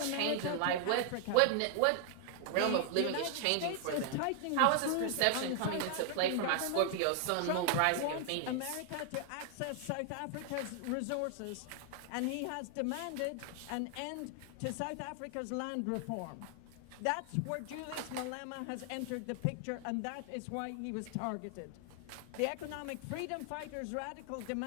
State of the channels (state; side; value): different; both; correlation 0.00